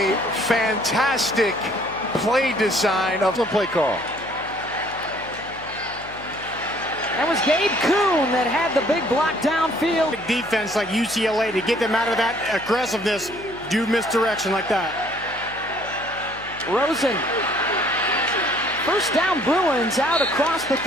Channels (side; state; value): left; noise; hum, 19 dB below the sound